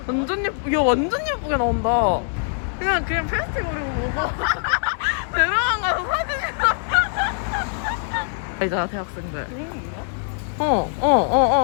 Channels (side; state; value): right; silent; digital silence